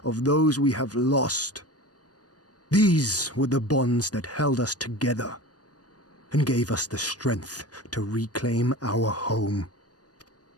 of those we have lost. These were the bonds that held us together and gave us the strength to reclaim our home.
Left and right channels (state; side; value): late; right; 0.68 ms